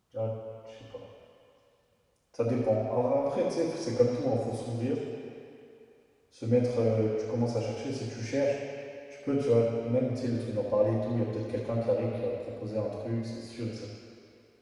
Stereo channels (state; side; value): identical; both; correlation 1.00